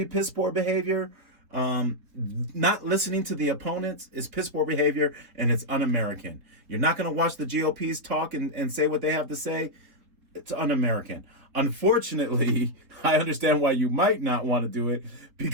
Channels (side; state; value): left; late; 3.9 ms